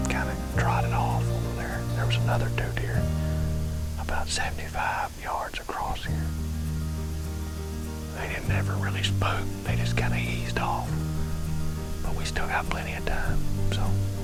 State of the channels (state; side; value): identical; both; correlation 1.00